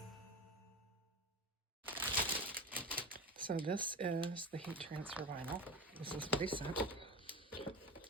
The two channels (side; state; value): both; normal; correlation 0.27